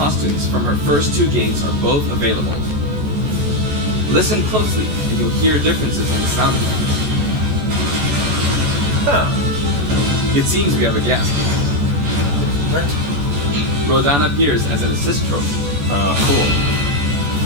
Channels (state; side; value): late; left; 14 ms